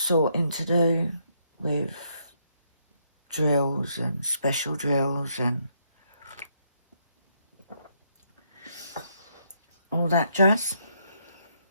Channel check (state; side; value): inverted; both; correlation -0.73